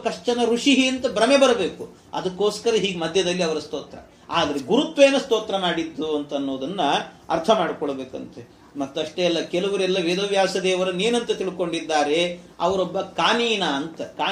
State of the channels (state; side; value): identical; both; correlation 1.00